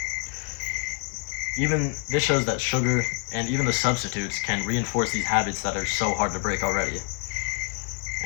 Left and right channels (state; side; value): quieter; right; 37.0 dB